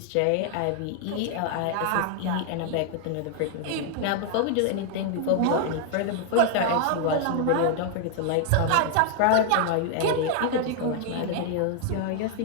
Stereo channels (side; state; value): both; different; correlation 0.00